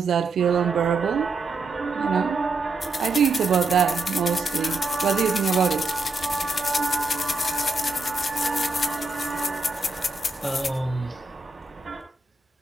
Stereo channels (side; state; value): left; quieter; 3.4 dB